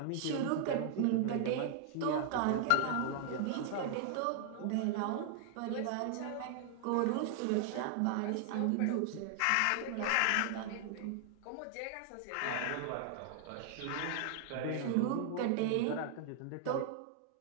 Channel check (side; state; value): both; different; correlation 0.00